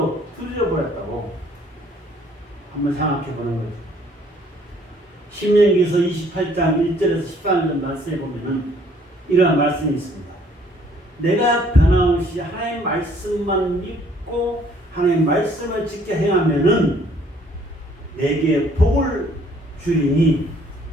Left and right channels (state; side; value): normal; both; correlation 0.61